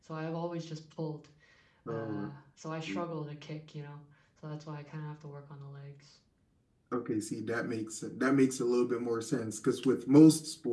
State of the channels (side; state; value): both; identical; correlation 1.00